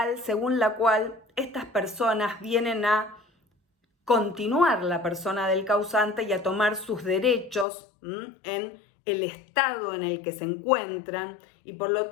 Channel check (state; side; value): drops out; right; at 7.7 s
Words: según la cual estas personas vienen a continuar la persona del causante y a tomar sus derechos en el estado en el que se encuentran, y por lo